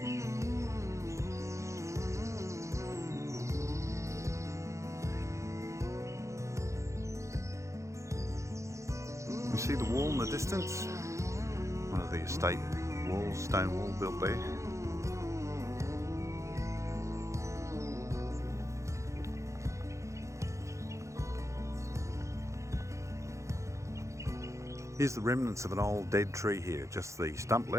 You see the wall in the distance? One of the estate walls, stone wall built there. Here's the remnants of an old dead tree here, just the stump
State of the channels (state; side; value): late; left; 0.15 ms